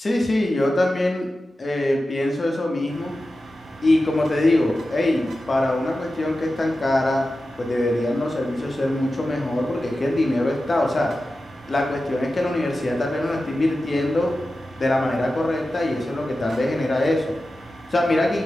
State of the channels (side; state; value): both; normal; correlation 0.93